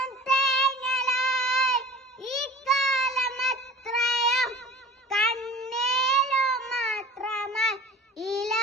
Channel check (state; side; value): normal; both; correlation 0.40